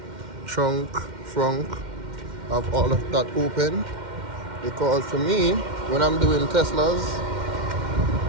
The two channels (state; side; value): late; left; 2.1 ms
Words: trunk, have all of that open. Because for me, when I'm doing Teslas,